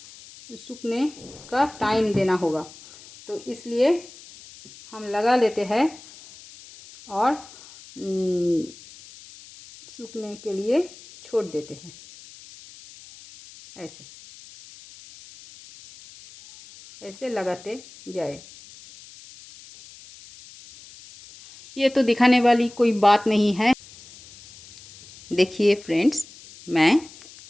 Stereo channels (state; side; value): noise; left; hiss, 20 dB below the sound